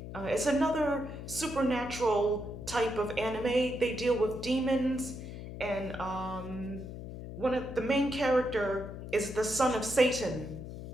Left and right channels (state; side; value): noise; left; hum, 10 dB below the sound